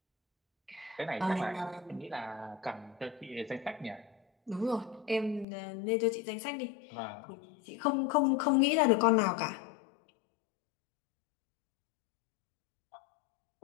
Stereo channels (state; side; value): drops out; right; at 5.5 s